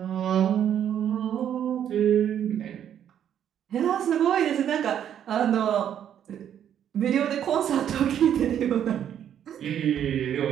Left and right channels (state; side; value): quieter; left; 9.7 dB